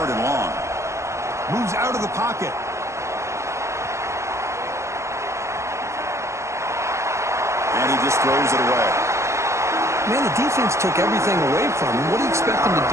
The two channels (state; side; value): late; left; 0.14 ms